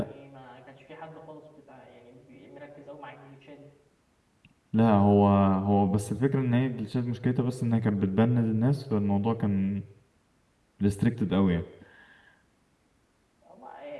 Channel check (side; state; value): both; identical; correlation 1.00